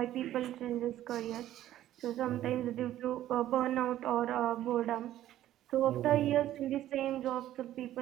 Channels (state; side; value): quieter; left; 13.1 dB